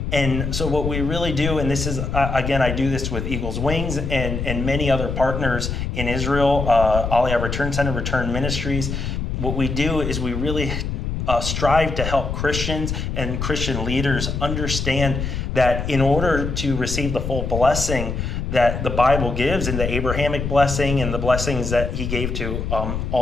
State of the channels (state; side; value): noise; left; rumble, 3 dB below the sound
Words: And so what we really do, and this is again, I do this with Eagle's Wings and many other partners in Israel, Aliyah Return Center, Return Ministries. What we do is we really strive to help Christians and Christian leaders understand that in order to receive the full blessing that the Bible gives, and the Abrahamic blessing and the blessings that he gave to